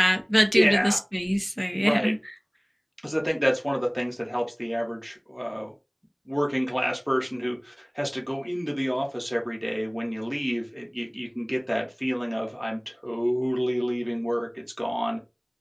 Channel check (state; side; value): identical; both; correlation 1.00